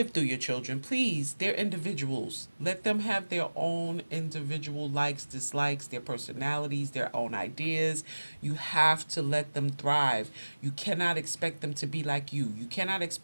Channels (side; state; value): both; inverted; correlation -1.00